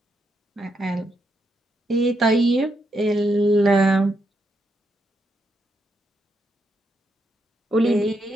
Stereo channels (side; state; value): both; normal; correlation 0.80